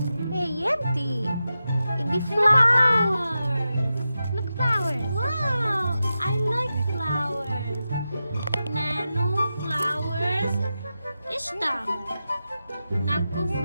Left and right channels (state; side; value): inverted; both; correlation -0.91